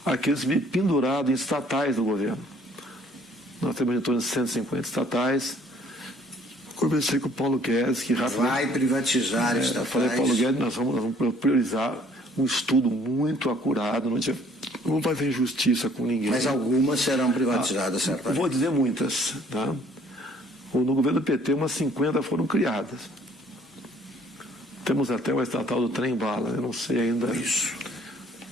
àqueles pendurados em estatais do governo. Nós temos em torno de 150 estatais. Conversei com o Paulo Guedes, que rapidamente... Vai privatizar estatais. Falei, Paulo Guedes, nós vamos priorizar um estudo muito acurado, não vai haver injustiça com ninguém. Mas algumas serão privatizadas, certamente. Vou dizer muitas. Tá? No governo do PT, umas 50 foram criadas. Temos até uma estatal do trem-bala, eu não sei ainda. Isso.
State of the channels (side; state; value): both; normal; correlation 0.59